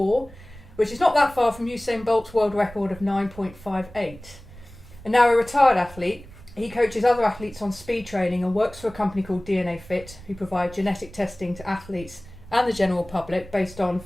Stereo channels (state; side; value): noise; right; rumble, 18 dB below the sound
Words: which is not that far from Usain Bolt's world record of 9.58. And now a retired athlete, he coaches other athletes on speed training and works for a company called DNA Fit, who provide genetic testing to athletes and the general public based on